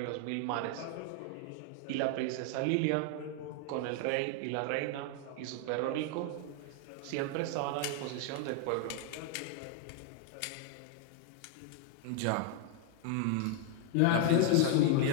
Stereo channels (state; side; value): different; both; correlation 0.00